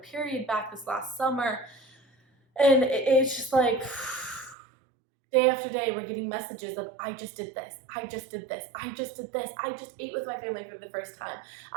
back this last summer. And it's just like, day after day, we're getting messages of, I just did this, I just did this, I just did this, I just ate with my family for the first time,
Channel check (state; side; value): drops out; left; at 4.5 s